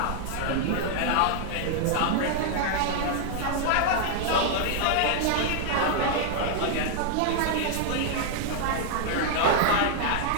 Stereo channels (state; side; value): different; both; correlation 0.00